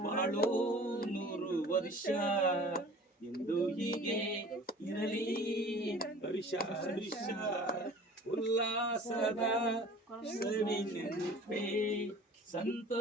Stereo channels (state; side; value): normal; both; correlation 0.45